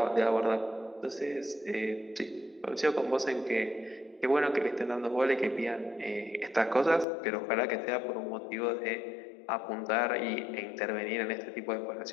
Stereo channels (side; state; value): right; drops out; at 7.1 s